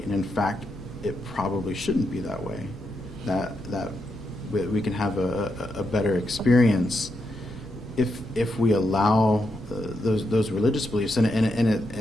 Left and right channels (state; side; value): normal; both; correlation 0.83